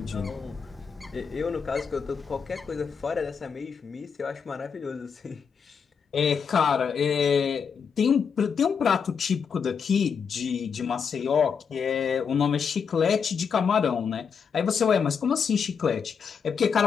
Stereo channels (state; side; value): quieter; right; 6.4 dB